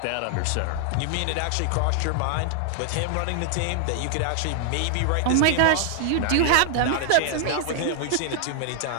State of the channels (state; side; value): different; both; correlation 0.00